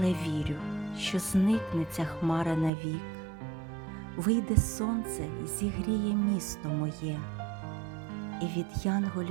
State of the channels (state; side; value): drops out; left; at 2.7 s